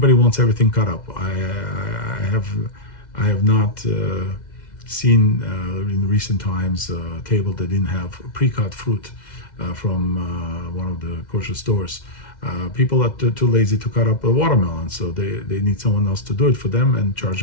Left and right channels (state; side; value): late; right; 2.0 ms